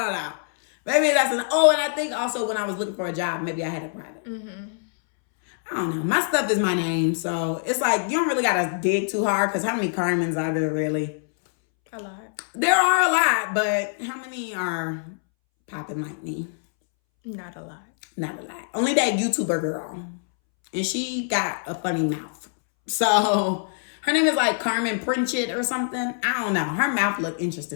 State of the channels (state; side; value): silent; right; 62 dB below the other